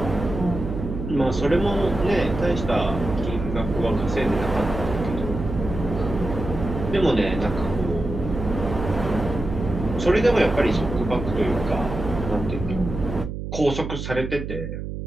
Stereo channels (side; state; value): right; noise; hum, 6 dB below the sound